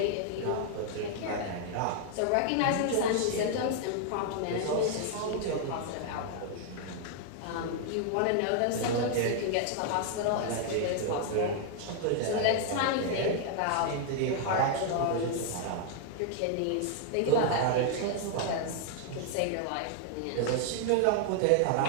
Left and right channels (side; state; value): both; different; correlation 0.00